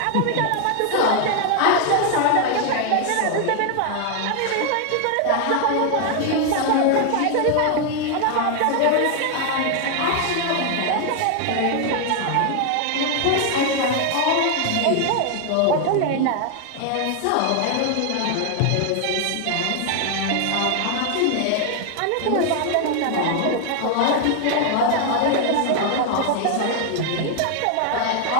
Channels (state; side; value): different; both; correlation 0.00